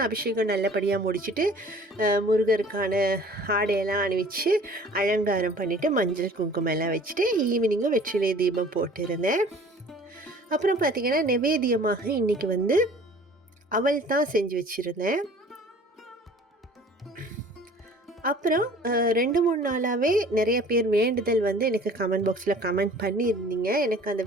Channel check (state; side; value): normal; both; correlation 0.49